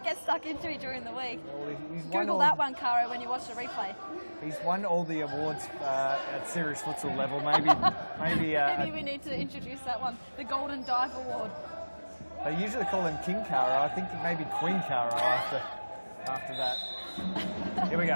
get stuck into it during the week. Google that one, Caro, when you watch the replay. He's won all the awards at serious futsal level. Maybe we need to introduce that one, the Golden Dive Award. They usually call him King Caro. I think maybe Queen Caro after that. Here we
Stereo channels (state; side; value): inverted; both; correlation -1.00